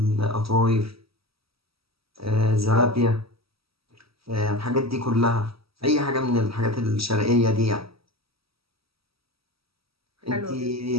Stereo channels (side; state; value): left; late; 0.76 ms